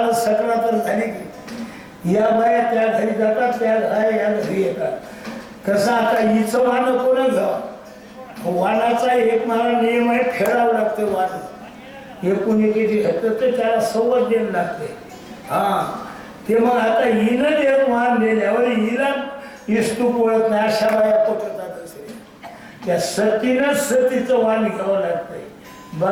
सकरा तर झाली की या बाया त्या घरी जातात, त्या या घरी येतात. कसं आता हिचं वाण कोण घ्यावं? वाणाचा एक मला नियम आहे, फेडावं लागतं वाण. एकूण एकेची घातलं तर त्याला सवत द्यायला लागते. ते मग आता हिनं जे वाण दिल्यावर हिला इस्तू पोळत नाही अशा बाया पोटतात असे. त्या सतीनंच सतीचं वाण घ्यावं लागतंय.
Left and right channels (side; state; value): both; identical; correlation 1.00